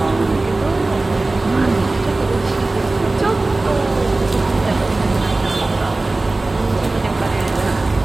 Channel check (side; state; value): left; quieter; 3.1 dB